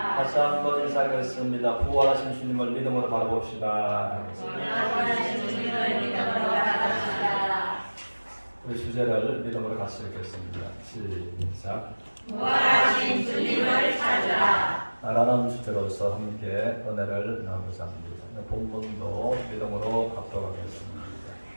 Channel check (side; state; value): both; inverted; correlation -1.00